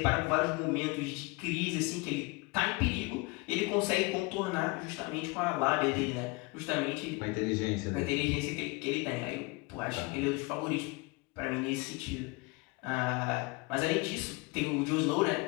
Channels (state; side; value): quieter; right; 26.2 dB